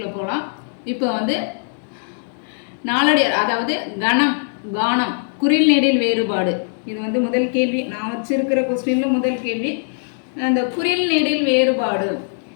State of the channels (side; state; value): right; silent; digital silence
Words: போகலாம். இப்போ நாலடியார், அதாவது கணம், கானம், குறில் நெடில் வேறுபாடு. இது முதல் கேள்வி. நான் வச்சிருக்கிற கொஸ்டினில் முதல் கேள்வி. அந்த குறில் நெடில் வேறுபாடு